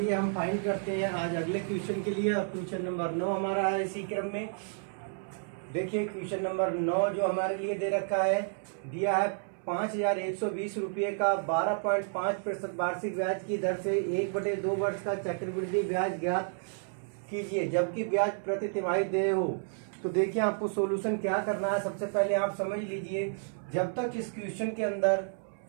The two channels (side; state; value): left; silent; 56 dB below the other